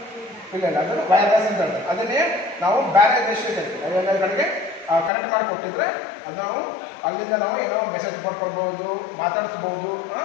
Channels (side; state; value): right; drops out; at 5.1 s